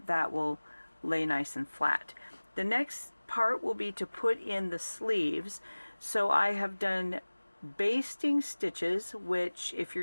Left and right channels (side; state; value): both; inverted; correlation -1.00